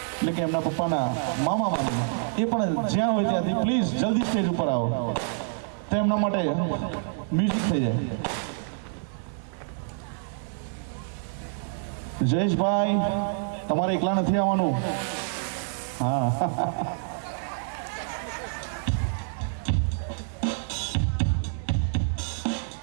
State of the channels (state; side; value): silent; left; digital silence